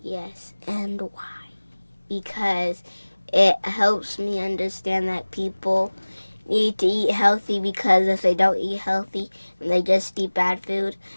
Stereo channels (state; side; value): inverted; both; correlation -1.00